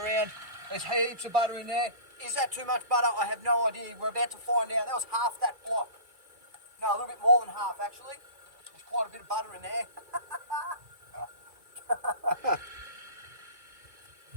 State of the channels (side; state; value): left; late; 2.4 ms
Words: around. There's heaps of butter in there. Is that too much butter? I have no idea. We're about to find out. That was half that block. No, a little bit more than half actually. There's quite a bit of butter in there.